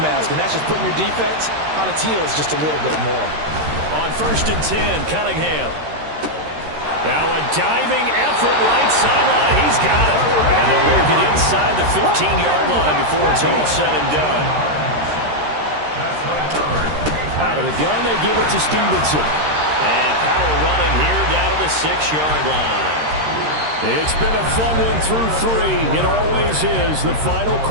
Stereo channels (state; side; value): late; left; 13 ms